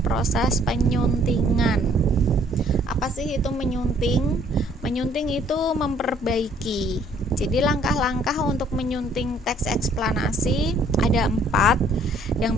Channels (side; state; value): both; normal; correlation 0.61